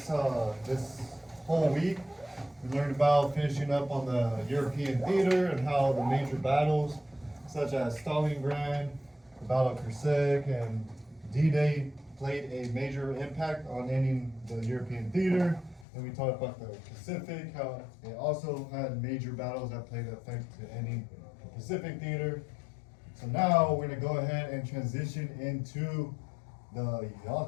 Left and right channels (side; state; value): right; drops out; at 15.9 s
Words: whole week. We learned about finishing up on the European theater and how the major battles, such as Stalingrad, the Battle of Kursk, and D-Day played a major impact on ending the European theater. And we talked about the Pacific, how it also had major battles that played effect to ending the Pacific theater. So now we're gonna go ahead and transition into the